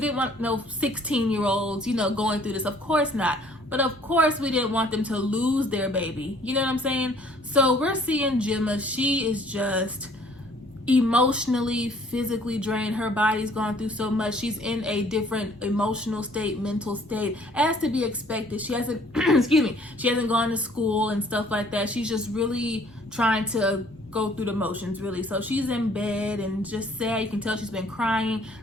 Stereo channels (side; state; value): both; normal; correlation 0.58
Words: want no 16-year-olds, going through this. Of course not. But of course, we didn't want them to lose their baby. You know what I'm saying? So we're seeing Gemma. She is just emotionally, physically drained. Her body's gone through so much. She's in a different emotional state, mental state, as to be expected. She hasn't, she hasn't gone to school and stuff like that. She's just really trying to go through the motions, really. So she's in bed and just sad. You can tell she's been crying.